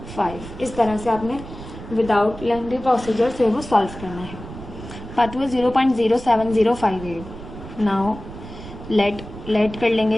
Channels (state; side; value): noise; right; rumble, 13 dB below the sound